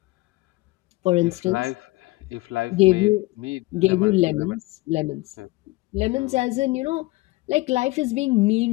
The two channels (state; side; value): quieter; right; 21.0 dB